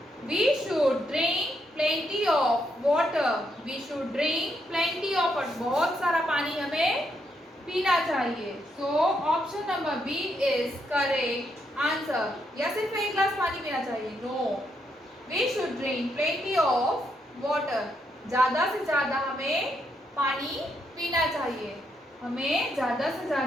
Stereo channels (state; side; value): normal; both; correlation 0.78